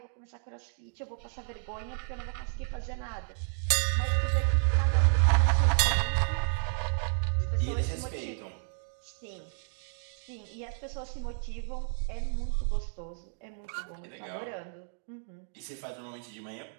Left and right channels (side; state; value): left; silent; 55 dB below the other